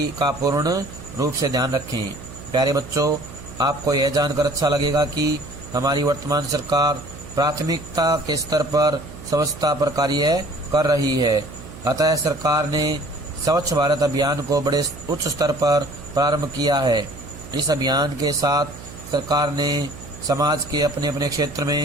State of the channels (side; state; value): right; noise; hum, 15 dB below the sound